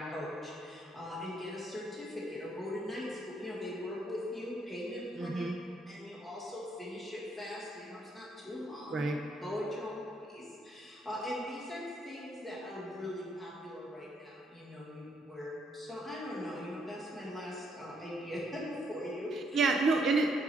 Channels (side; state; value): both; normal; correlation 0.72